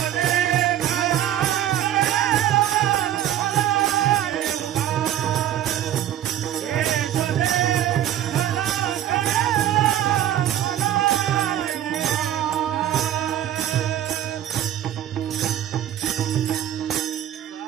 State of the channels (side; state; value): left; quieter; 11.4 dB